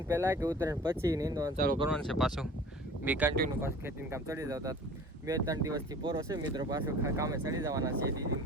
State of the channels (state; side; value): normal; both; correlation 0.44